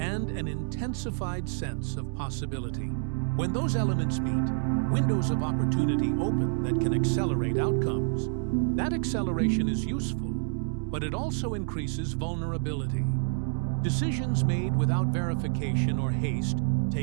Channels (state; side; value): silent; left; 59 dB below the other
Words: an intensified sense of possibility. When those elements meet, windows of opportunity open that can accelerate outcomes. That acceleration is useful, but it also increases vulnerability. Decisions made without verification or haste,